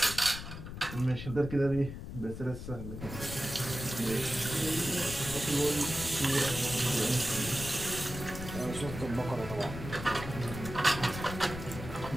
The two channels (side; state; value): left; noise; rumble, 9 dB below the sound